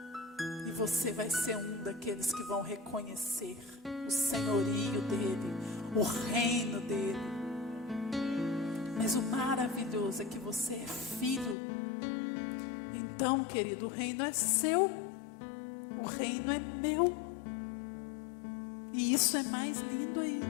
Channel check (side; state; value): right; drops out; at 11.6 s